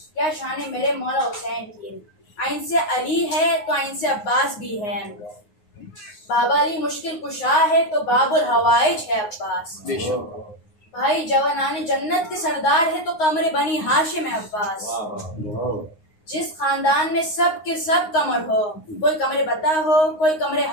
کیا شان ہے میرے مولا حسین کی. آئین سے علی ہے تو آئین سے عباس بھی ہے. بابا علی مشکل کشا ہے تو باب الحوائج ہے عباس. بھائی جوانان جنت کے سردار ہے تو قمر بنی ہاشم ہے عباس. جس خاندان میں سب کے سب قمر ہو، کوئی قمر بتا ہو، کوئی قمر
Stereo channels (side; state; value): right; late; 9.6 ms